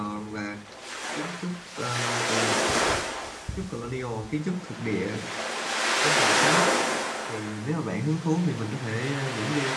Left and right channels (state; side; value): identical; both; correlation 1.00